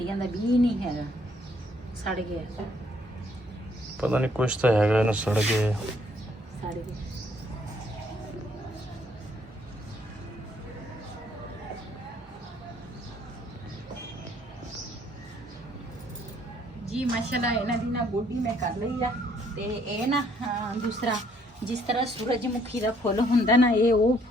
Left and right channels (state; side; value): normal; both; correlation 0.66